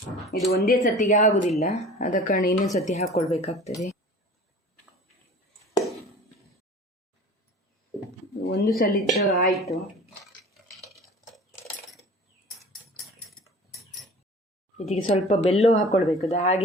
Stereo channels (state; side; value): normal; both; correlation 0.42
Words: ಇದು ಒಂದೇ ಸತಿಗೆ ಆಗುವುದಿಲ್ಲ, ಆದ ಕಾರಣ ಇನ್ನೊಂದು ಸತಿ ಹಾಕ್ಕೊಳ್ಬೇಕಾಗ್ತದೆ. ಒಂದು ಸಲ ಆಯಿತು. ಇದಕ್ಕೆ ಸ್ವಲ್ಪ ಬೆಲ್ಲ ಹಾಕ್ಕೊಳ್ಬೇಕು. ಅದು